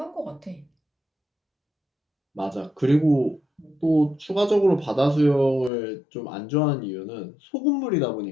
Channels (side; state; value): right; drops out; at 5.7 s